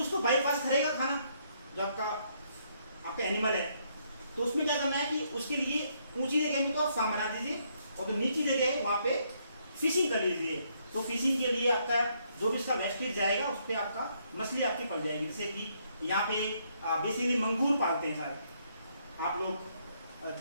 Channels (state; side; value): inverted; both; correlation -0.72